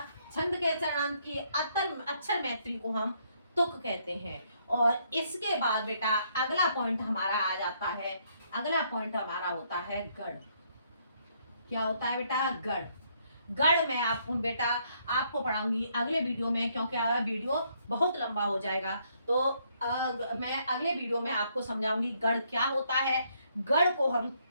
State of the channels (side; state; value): both; inverted; correlation -0.71